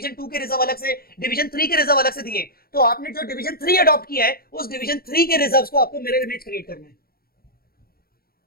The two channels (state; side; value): late; right; 0.44 ms